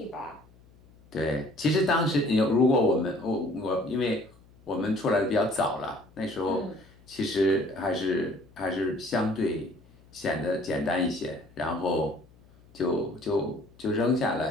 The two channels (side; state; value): left; noise; hum, 27 dB below the sound